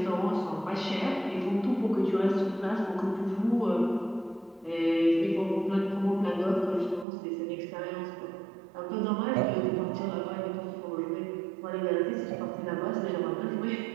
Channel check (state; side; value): drops out; left; at 7.1 s